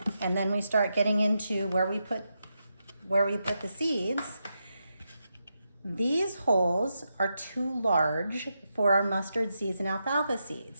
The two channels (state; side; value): inverted; both; correlation -0.86